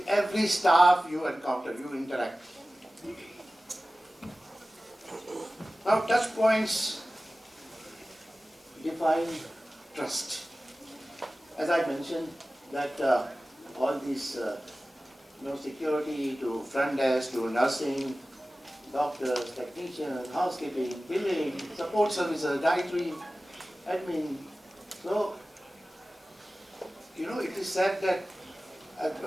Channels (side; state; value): both; normal; correlation 0.96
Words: every staff you encounter, you interact. Now touch points define trust. As I mentioned that all these security to front desk to nursing, doctors, technicians, housekeeping, billing, support services, dietary, admin. So, it is said that